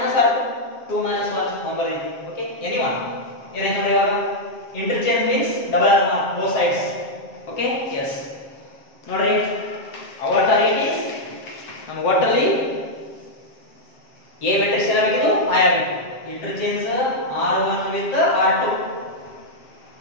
r2 2 minus 1 number okay anyone ಏನಾಯ್ತು ನೋಡಿ ಇವಾಗ interchange means double r both sides okay yes ನೋಡಿ our target is ನಮಗೆ ಒಟ್ಟಲ್ಲಿ a matrix ಏನಾಗಬೇಕು I ಆಗಬೇಕು interchange r1 with r2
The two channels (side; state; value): right; late; 7.5 ms